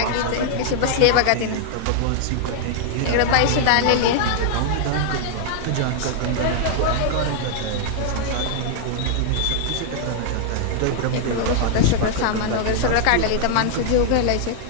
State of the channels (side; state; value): both; different; correlation -0.01